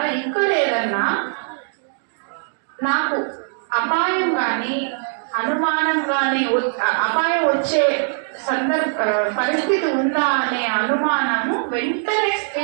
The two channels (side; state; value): left; silent; digital silence